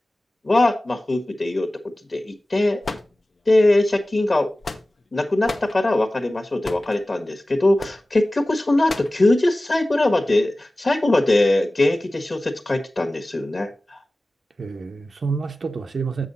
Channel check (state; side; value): normal; both; correlation 0.97